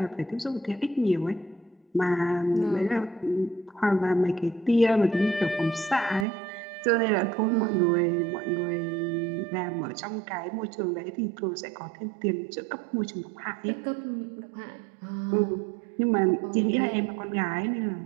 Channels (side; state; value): left; drops out; at 6.2 s